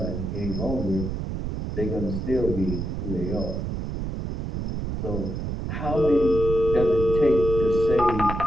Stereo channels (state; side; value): noise; right; rumble, 4 dB below the sound